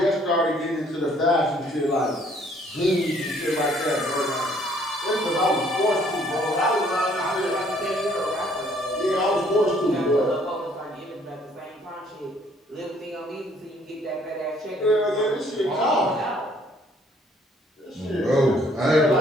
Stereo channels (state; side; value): normal; both; correlation 0.62